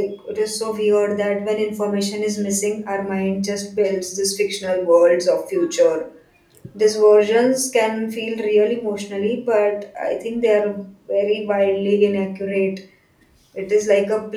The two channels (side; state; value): both; identical; correlation 1.00